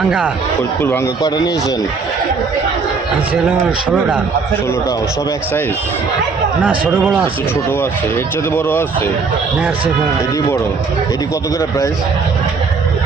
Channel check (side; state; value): left; quieter; 4.7 dB